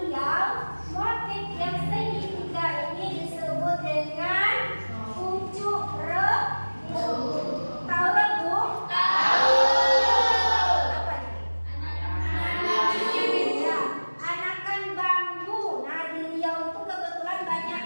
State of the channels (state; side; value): inverted; both; correlation -1.00